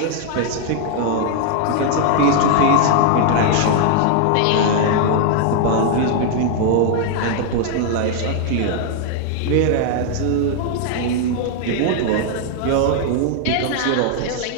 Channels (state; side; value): different; both; correlation 0.00